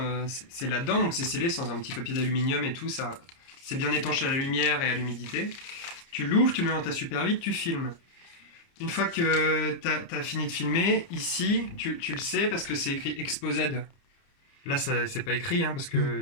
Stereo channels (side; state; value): right; late; 30 ms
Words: là-dedans, donc c'est scellé sans un petit papier d'aluminium et tout, ça, c'est bien étanché à la lumière et à l'humidité. Tu l'ouvres, tu le mets dans ta Super 8, tu filmes. Une fois que tu as fini de filmer, ici, tu le sais parce que c'est écrit ExpoZ. Là, c'est pas écrit, hein, parce